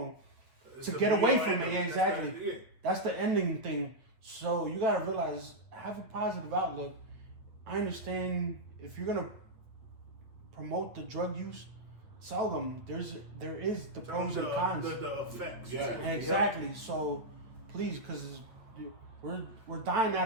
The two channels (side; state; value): left; late; 8.8 ms